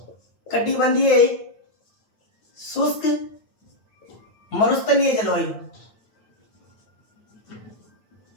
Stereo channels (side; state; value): right; late; 9.1 ms